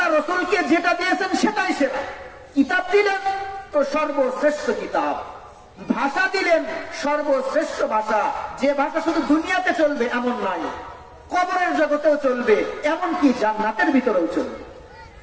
রাসূলকে যেটা দিয়েছেন সেটাই সেরা। কিতাব দিলেন তো সর্বশ্রেষ্ঠ কিতাব, ভাষা দিলেন সর্বশ্রেষ্ঠ ভাষা। যে ভাষা শুধু দুনিয়াতে চলবে এমন নয়, কবরের জগতেও চলবে, এমনকি জান্নাতের ভিতরেও চলবে।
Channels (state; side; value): identical; both; correlation 1.00